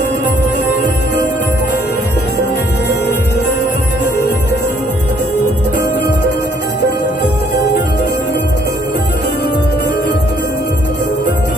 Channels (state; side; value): normal; both; correlation 0.64